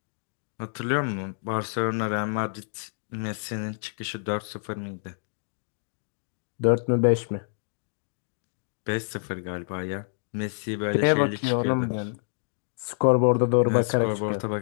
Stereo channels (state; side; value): silent; right; digital silence